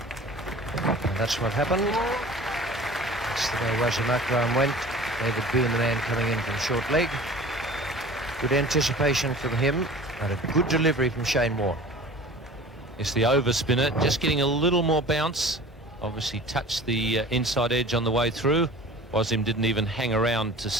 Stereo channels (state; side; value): normal; both; correlation 0.42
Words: And that's what happened. That's the way Wasim Akram went. David Boone, the man coming in from short leg. Good anticipation from him, and a good delivery from Shane Warne. It's the over spinner, just getting a little more bounce. Obviously touched the inside edge on the way through. Wasim didn't even hang around to